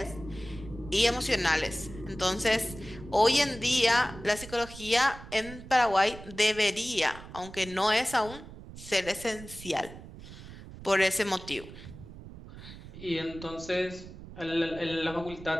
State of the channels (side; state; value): right; noise; rumble, 15 dB below the sound